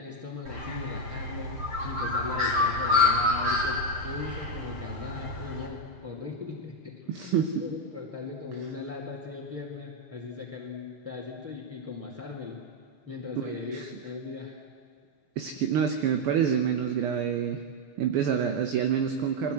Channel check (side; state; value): left; late; 6.6 ms